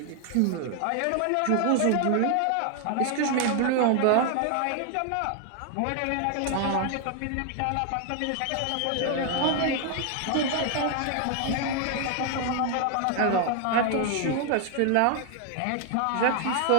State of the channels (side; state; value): both; different; correlation 0.00